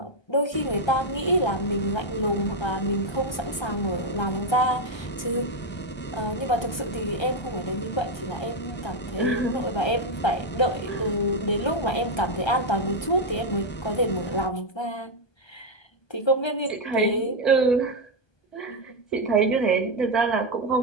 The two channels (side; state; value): right; late; 1.3 ms